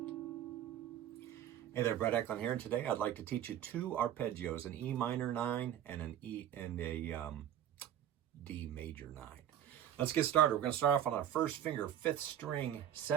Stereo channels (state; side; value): quieter; left; 10.7 dB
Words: there, Brett Eklund here, and today I'd like to teach you two arpeggios, an E minor 9 and an E and a D major 9. Let's get started. We're going to start off on our first finger, 5th string,